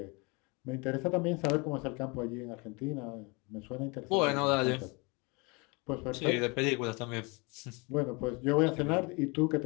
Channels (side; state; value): right; quieter; 28.7 dB